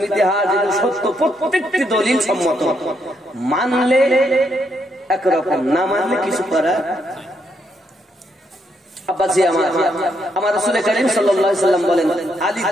ইতিহাস সত্য, প্রত্যেকটি দলিল সম্মত। মানলে একরকম, না মানলে কিছু করা। আব্বাজি আমার রাসূল করিম সাল্লাল্লাহু আলাইহি সাল্লাম বলেন, আলী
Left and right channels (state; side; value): normal; both; correlation 0.76